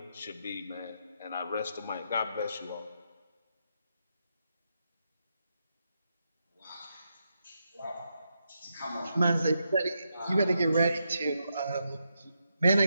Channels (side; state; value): both; inverted; correlation -0.84